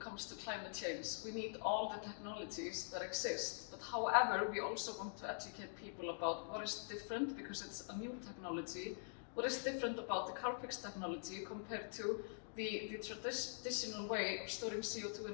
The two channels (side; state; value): right; silent; digital silence